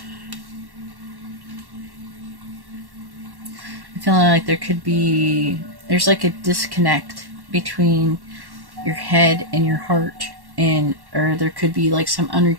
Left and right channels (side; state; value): left; late; 1.1 ms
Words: I feel like there's like a disconnect between your head and your heart, or there could be like some